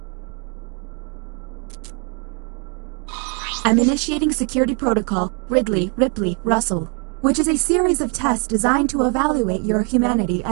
I'm initiating security protocol Ridley, Ripley, Russell, which is a series of tests designed to evaluate your humanity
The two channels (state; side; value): quieter; left; 37.2 dB